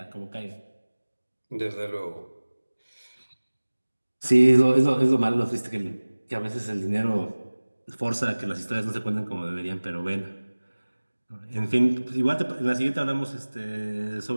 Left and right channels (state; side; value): inverted; both; correlation -1.00